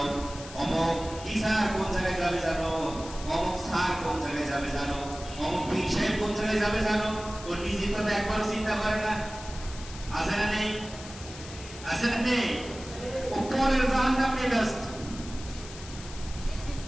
অমুক টিচার কোন জায়গায় যাবে জানো, অমুক স্যার কোন জায়গায় যাবে জানো, অমুক পীর সাহেব কোন জায়গায় যাবে জানো। ও নিজের কথা একবারও চিন্তা করে না। আছে না নেই? আছে না নেই? ও পরের জাহান্নাম নিয়ে ব্যস্ত,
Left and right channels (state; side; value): noise; left; hiss, 15 dB below the sound